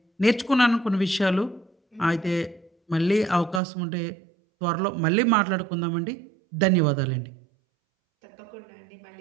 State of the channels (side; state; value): left; drops out; at 3.6 s